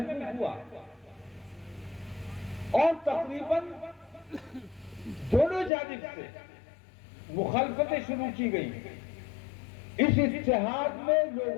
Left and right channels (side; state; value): right; drops out; at 5.7 s